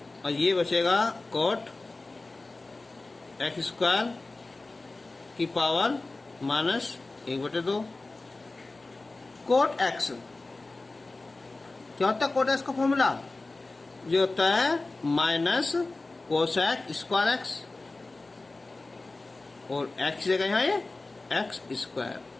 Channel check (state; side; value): quieter; right; 3.2 dB